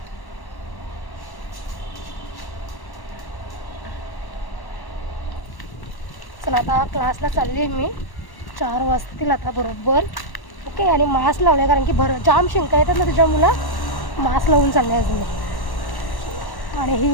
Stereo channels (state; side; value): late; right; 1.1 ms